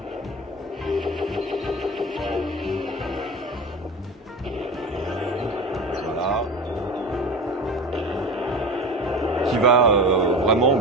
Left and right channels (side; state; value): both; normal; correlation 0.31